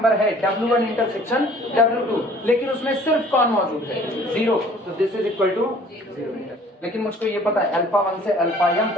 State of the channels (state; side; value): normal; both; correlation 0.53